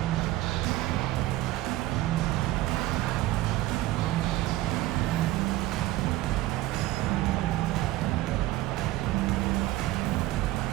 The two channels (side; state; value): left; quieter; 16.5 dB